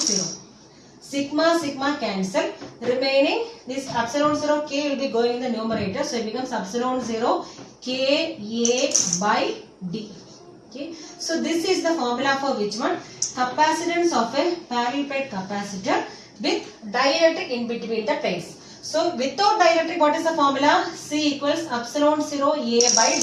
Sigma, sigma cancel. Remaining this epsilon 0 K will be going in the numerator. So it becomes epsilon 0 K A by D. Okay. So this is the formula for which one? Capacitance of a parallel plate capacitor with dielectric in between the plates. So without dielectric, what is the formula? C equals epsilon 0 A by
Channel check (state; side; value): identical; both; correlation 1.00